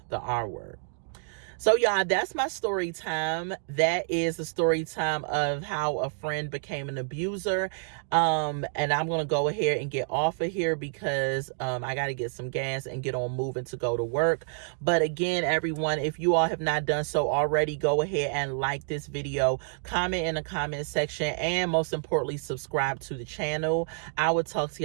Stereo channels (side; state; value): left; silent; digital silence